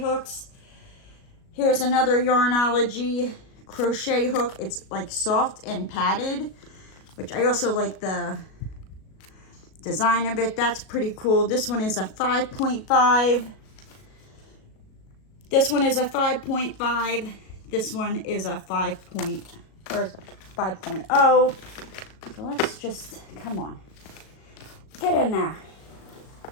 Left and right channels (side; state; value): right; late; 37 ms